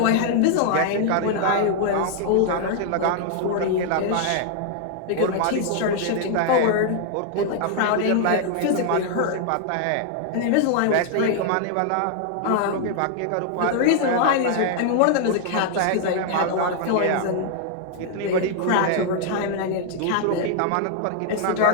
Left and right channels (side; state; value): both; different; correlation 0.00